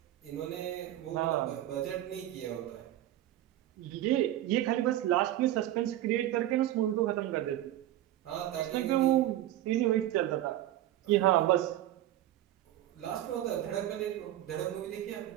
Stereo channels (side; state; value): left; quieter; 13.5 dB